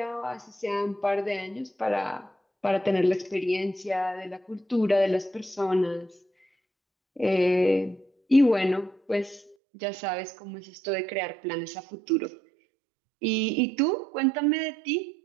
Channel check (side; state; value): left; drops out; at 9.6 s